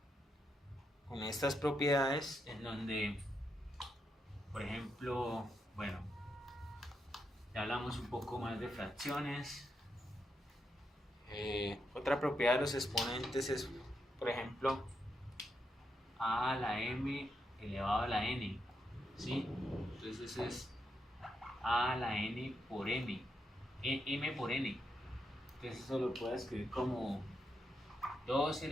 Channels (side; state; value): both; normal; correlation 0.83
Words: propiedades en donde, por ejemplo, bueno, ya hablamos un poco más de fracciones. Otra propiedad de los exponentes es, por ejemplo, a a la m elevado a la n, ¿sí? Entonces es a a la n por m, m por n. Entonces eso lo puedo escribir como 2